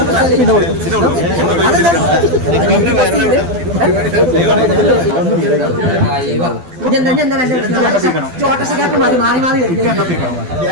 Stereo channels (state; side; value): late; left; 12 ms